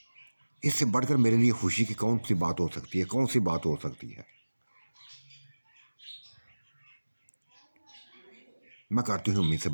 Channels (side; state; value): both; inverted; correlation -1.00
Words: इससे बढ़कर मेरे लिए खुशी की कौन सी बात हो सकती है, कौन सी बात हो सकती है। मैं करती हूँ अम्मी से